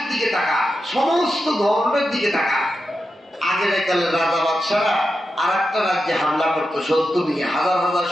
দিকে তাকা, সমস্ত ধর্মের দিকে তাকা। আগের কালে রাজা বাদশারা আর একটা রাজ্যে হামলা করতো, শত্রু নিয়ে হাজার হাজার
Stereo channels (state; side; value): normal; both; correlation 0.89